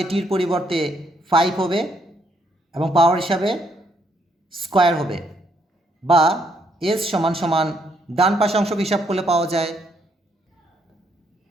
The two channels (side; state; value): both; normal; correlation 0.72